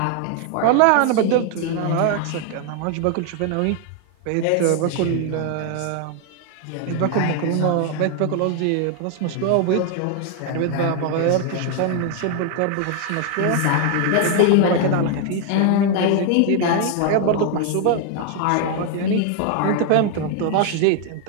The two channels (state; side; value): different; both; correlation 0.00